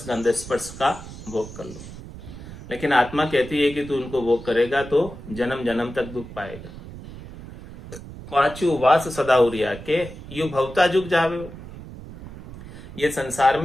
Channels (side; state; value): right; noise; rumble, 14 dB below the sound